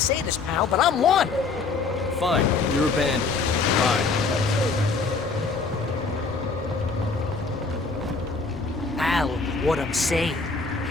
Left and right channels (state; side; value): quieter; right; 4.3 dB